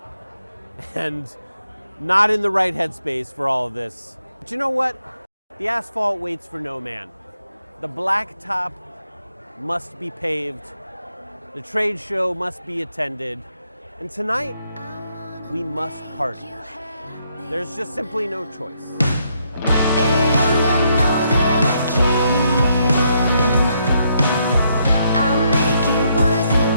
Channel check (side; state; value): both; inverted; correlation -0.76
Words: and not in the right headspace for all of this. But you know what? The asphalt waits for no man. The blacktop must be paved. The trade show must be attended. And tonight, we must party. There's just simply no choice.